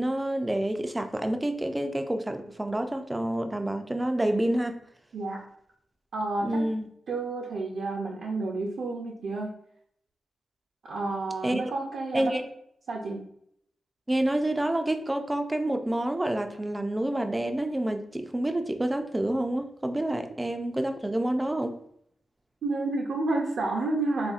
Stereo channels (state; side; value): normal; both; correlation 0.93